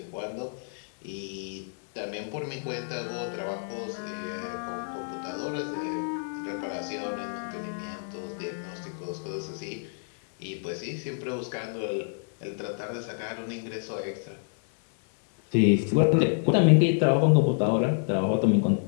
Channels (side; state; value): right; silent; 59 dB below the other